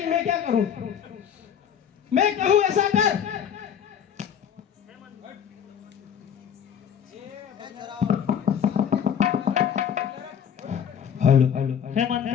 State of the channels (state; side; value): quieter; right; 8.3 dB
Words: मैं क्या करूं? मैं कहूं ऐसा कर। हेलो हे